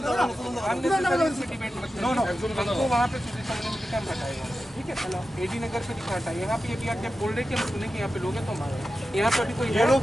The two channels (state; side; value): normal; both; correlation 0.92